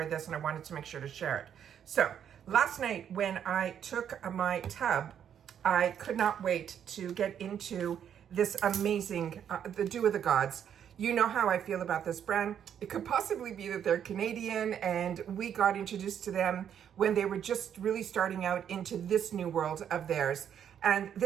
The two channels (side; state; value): left; quieter; 9.0 dB